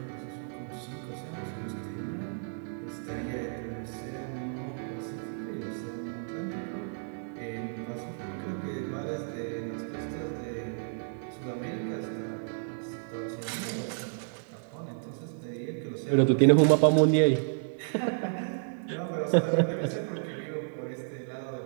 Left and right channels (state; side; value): silent; left; digital silence